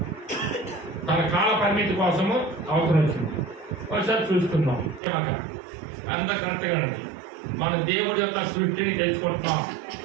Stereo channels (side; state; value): left; drops out; at 5.0 s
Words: తన కాల పరిమితి కోసము అవసరం వచ్చింది. ఒకసారి చూసుకుందాం. కనుక అంత కరెక్ట్గా ఉంది. మనం దేవుడి యొక్క సృష్టిని తెలుసుకుంటున్నాం,